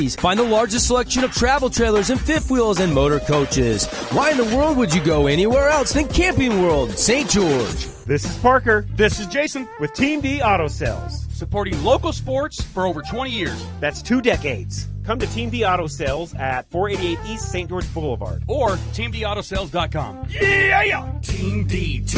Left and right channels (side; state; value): both; identical; correlation 1.00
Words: Find the largest selection of travel trailers and fifth wheels and motor coaches. Why in the world would you go anywhere else than Camping World St. George? This is Parker. This is Jason with Team D Auto Sales. Supporting local sports for over 20 years. That's 2 decades. Come to Team D Auto Sales at 488 East St. George Boulevard. Or TeamDAutoSales.com. Yeah! Team D,